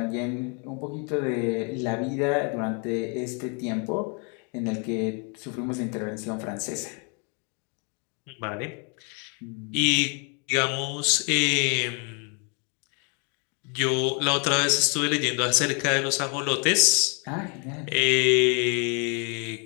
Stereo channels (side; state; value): right; quieter; 36.4 dB